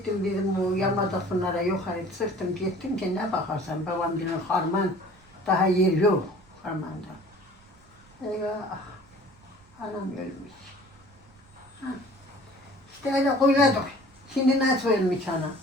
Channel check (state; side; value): noise; right; rumble, 27 dB below the sound